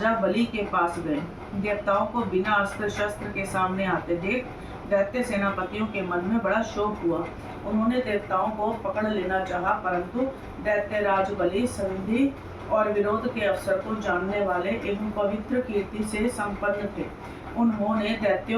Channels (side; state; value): both; identical; correlation 1.00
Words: बलि के पास गए। देवताओं को बिना अस्त्र शस्त्र के सामने आते देख दैत्य सेनापतियों के मन में बड़ा शोक हुआ। उन्होंने देवताओं को पकड़ लेना चाहा, परंतु दैत्यराज बलि संधि और विरोध के अवसर को जानने वाले एवं पवित्र कीर्ति से संपन्न थे। उन्होंने